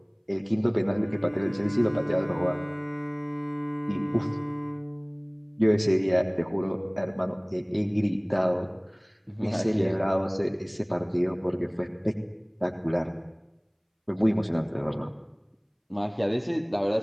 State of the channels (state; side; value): identical; both; correlation 1.00